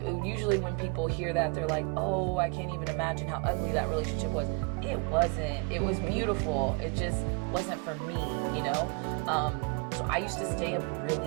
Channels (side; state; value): left; quieter; 33.8 dB